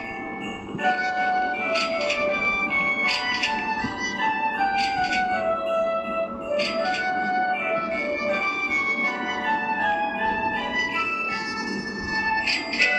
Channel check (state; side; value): identical; both; correlation 1.00